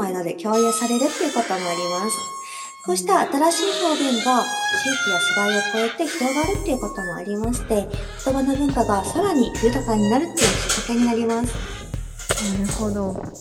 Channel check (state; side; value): identical; both; correlation 1.00